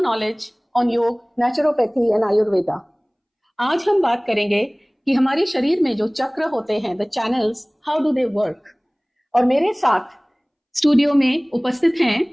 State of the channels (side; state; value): both; identical; correlation 1.00